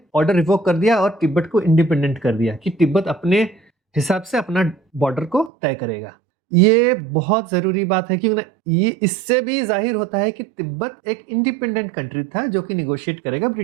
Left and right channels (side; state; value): left; drops out; at 5.5 s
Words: ऑर्डर रिवोक कर दिया और तिब्बत को इंडिपेंडेंट कर दिया कि तिब्बत अपने हिसाब से अपना बॉर्डर को तय करेगा। ये बहुत जरूरी बात है क्योंकि ये इससे भी जाहिर होता है कि तिब्बत एक इंडिपेंडेंट कंट्री था जो कि निगोशिएट करेगा